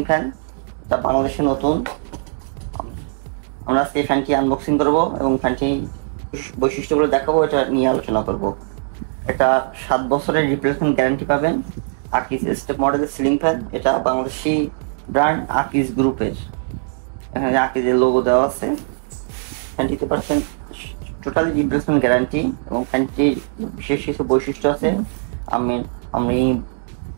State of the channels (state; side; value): silent; left; digital silence